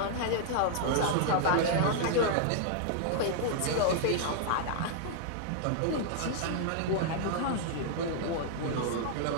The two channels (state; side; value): different; both; correlation -0.01